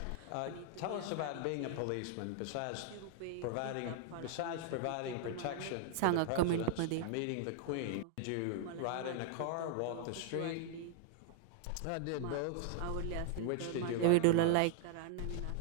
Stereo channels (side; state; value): both; different; correlation 0.00